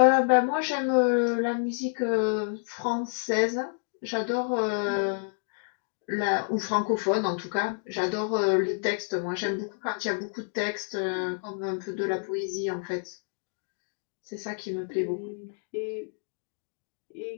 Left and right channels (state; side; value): silent; right; digital silence